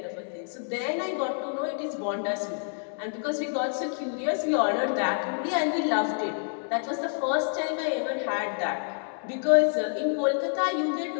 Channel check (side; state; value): right; silent; 59 dB below the other